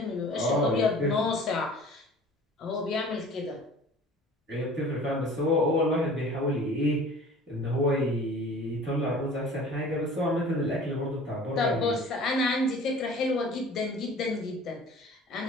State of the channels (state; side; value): normal; both; correlation 0.45